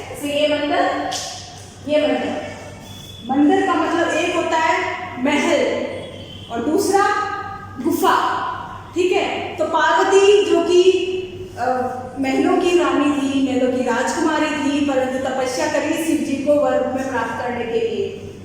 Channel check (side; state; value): both; identical; correlation 1.00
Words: जैसे ये मंदिर, ये मंदिर, मंदिर का मतलब एक होता है महल और दूसरा गुफा, ठीक है। तो पार्वती जो कि महलों की रानी थी, महलों की राजकुमारी थी, परंतु तपस्या करी शिव जी को वर रूप में प्राप्त करने के लिए,